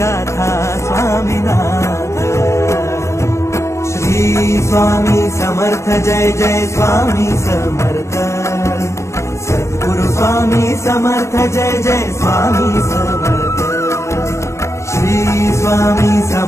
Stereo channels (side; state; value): right; late; 0.14 ms